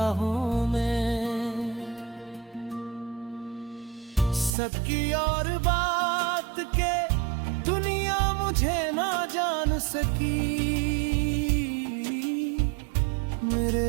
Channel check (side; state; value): left; drops out; at 4.5 s